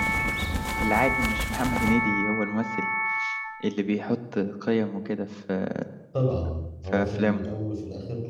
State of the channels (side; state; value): both; identical; correlation 1.00